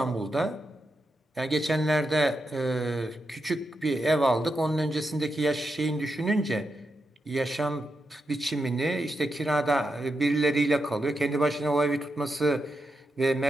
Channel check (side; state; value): both; normal; correlation 0.86